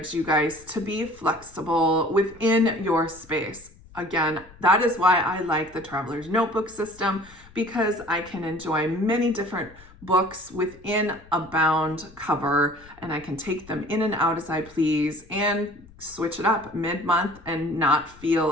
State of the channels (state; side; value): noise; left; rumble, 23 dB below the sound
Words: you guys to be flexible within your space. Again, that is why I like the Traveler's Notebook system, because I can enjoy many different books within a bound cover, and I can take them in and out as I please and switch it up mid-month and not